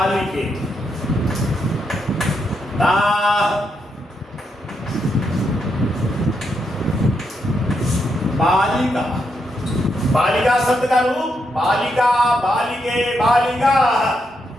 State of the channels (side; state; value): both; normal; correlation 0.80